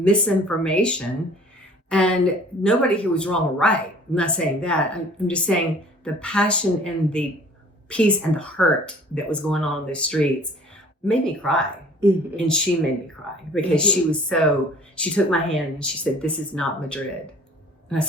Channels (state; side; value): normal; both; correlation 0.51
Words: and nobody here was wrong or right. I'm not saying that. I'm just saying the passion and the peace and the hurt that was going on in the streets made me cry. Mm-hmm. And she made me cry because she took my hand and she said, "This is not Madrid." And I